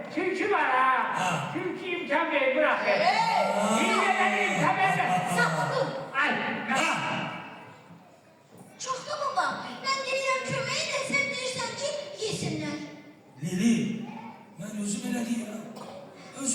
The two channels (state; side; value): identical; both; correlation 1.00